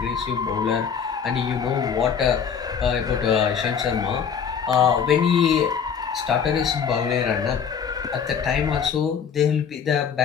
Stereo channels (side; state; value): right; quieter; 7.0 dB